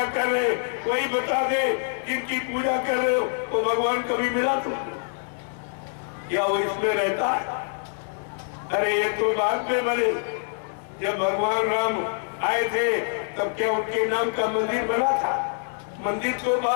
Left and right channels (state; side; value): silent; right; digital silence